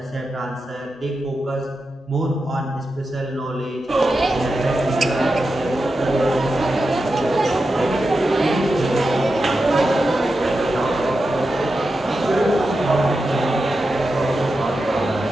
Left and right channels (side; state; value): both; normal; correlation 0.90